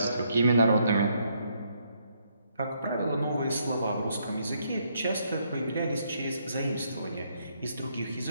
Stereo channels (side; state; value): both; inverted; correlation -0.73